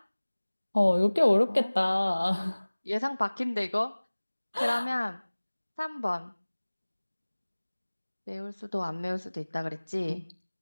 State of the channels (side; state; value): both; inverted; correlation -1.00